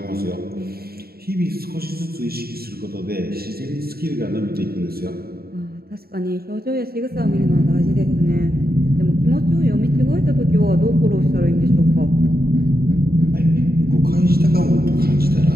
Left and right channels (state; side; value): late; left; 0.45 ms